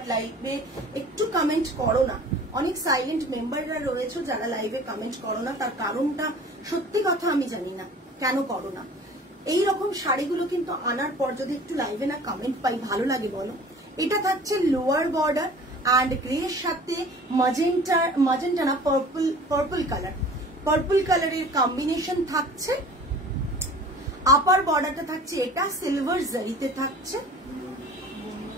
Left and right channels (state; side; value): normal; both; correlation 0.45